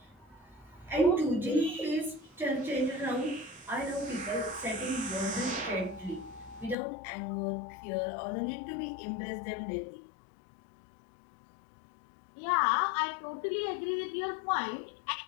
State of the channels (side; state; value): right; drops out; at 6.8 s